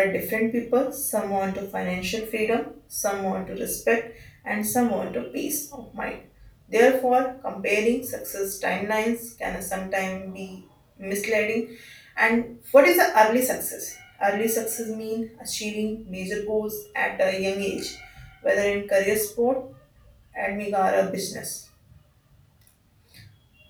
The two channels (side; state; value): both; identical; correlation 1.00